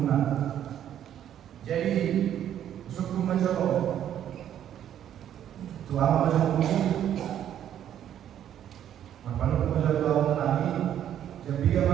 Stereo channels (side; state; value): left; quieter; 10.4 dB